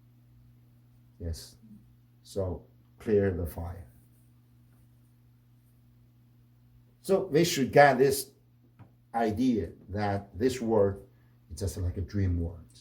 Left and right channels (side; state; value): both; identical; correlation 1.00